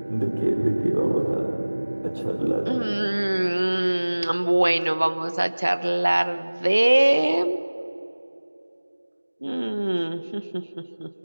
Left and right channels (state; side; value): inverted; both; correlation -1.00